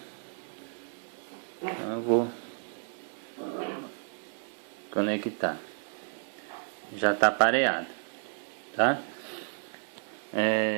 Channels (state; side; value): silent; left; 57 dB below the other